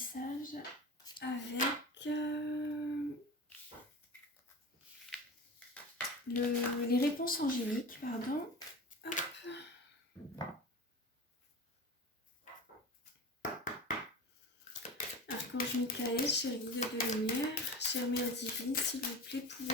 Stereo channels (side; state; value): both; normal; correlation 0.31